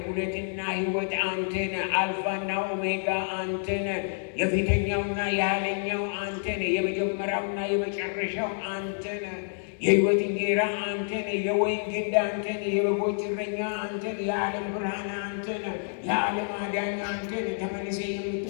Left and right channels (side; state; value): right; silent; digital silence